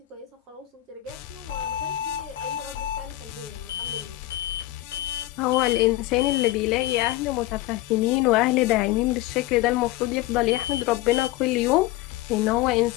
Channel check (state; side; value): quieter; right; 16.2 dB